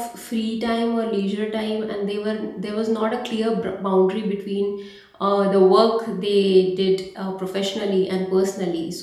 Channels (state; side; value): identical; both; correlation 1.00